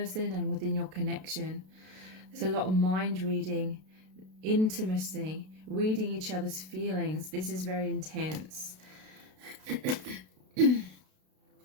and within your connection. There's a lot of mind reading, intimacy, reading each other's feelings. This is very intense.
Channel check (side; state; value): left; late; 32 ms